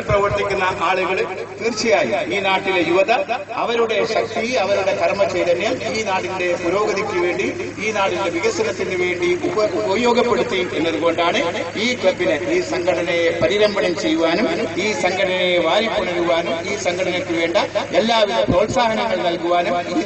പ്രവർത്തിക്കുന്ന ആളുകൾ തീർച്ചയായും ഈ നാട്ടിലെ യുവത അവരുടെ ശക്തി, അവരുടെ കർമ്മചൈതന്യം ഈ നാടിന്റെ പുരോഗതിക്ക് വേണ്ടി, ഈ നാടിന്റെ വികസനത്തിന് വേണ്ടി ഉപയോഗപ്പെടുത്തി എന്നതുകൊണ്ടാണ് ഈ ക്ലബിനെ, ഈ സംഘടനയെ പരിരംഭണം ചെയ്യുവാനും, ഈ സംഘടനയെ വാരിപ്പുണരുവാനും, ഈ സംഘടനയ്ക്ക് വേണ്ട എല്ലാവിധ പ്രോത്സാഹനങ്ങൾ നൽകുവാനും ഈ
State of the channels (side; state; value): both; identical; correlation 1.00